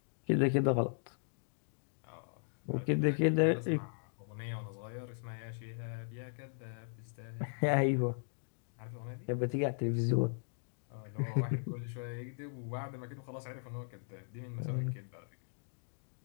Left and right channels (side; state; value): right; silent; digital silence